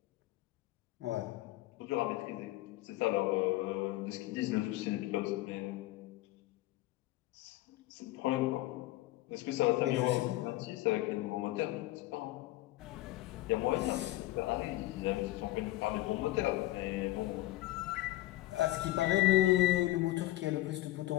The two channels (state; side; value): quieter; right; 17.1 dB